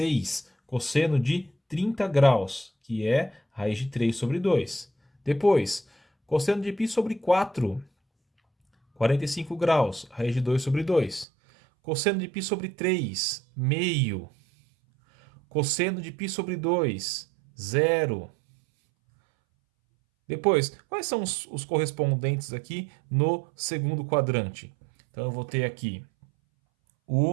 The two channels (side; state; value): left; drops out; at 11.2 s